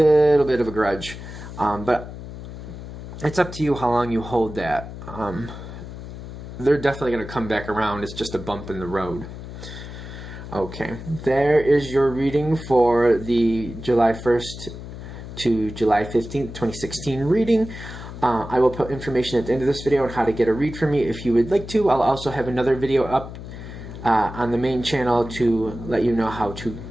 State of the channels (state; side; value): noise; left; hum, 11 dB below the sound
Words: bit of a grudge, but it's up to you how long you hold that. They're definitely going to come back around. It's just a bump in the road. Okay, there is your reading for the July 1st to July 15th, 2016 reading. I will put information at the end of this video on how to get a read from me if you would like to. I'll also have another video up on the main channel to let you know how to